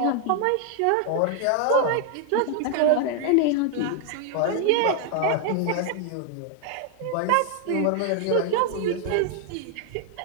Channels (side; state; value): both; different; correlation 0.00